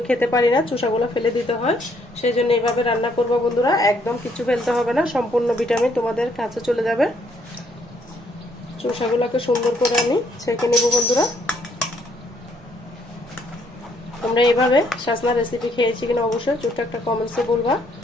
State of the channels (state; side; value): normal; both; correlation 0.68